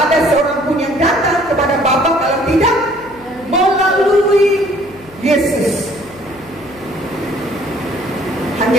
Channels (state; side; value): noise; left; hum, 24 dB below the sound